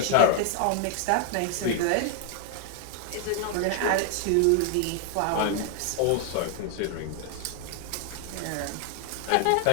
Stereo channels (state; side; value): different; both; correlation 0.01